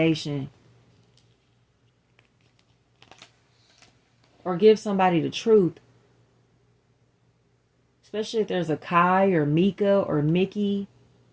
Or give somebody the truth. Especially if there's a Kai or Mika or Mickey,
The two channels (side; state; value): both; identical; correlation 1.00